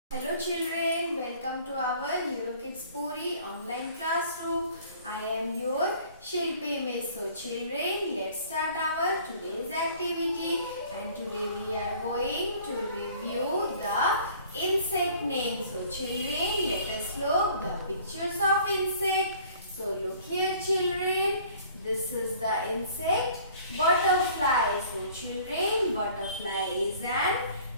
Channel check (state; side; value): inverted; both; correlation -0.52